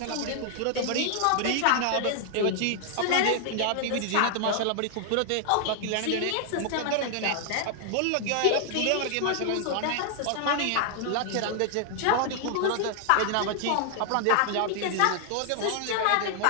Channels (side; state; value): both; different; correlation 0.00